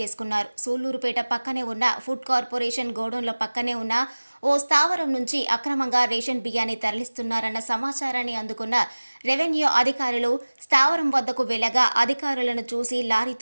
సూళ్లూరుపేట పక్కనే ఉన్న ఫుడ్ కార్పొరేషన్ గోడౌన్ల పక్కనే ఉన్న ఓ స్థావరం నుంచి అక్రమంగా రేషన్ బియ్యాన్ని తరలిస్తున్నారన్న సమాచారాన్ని అందుకున్న రెవెన్యూ అధికారులు స్థావరం వద్దకు వెళ్లగా అధికారులను చూసి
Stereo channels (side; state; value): both; inverted; correlation -1.00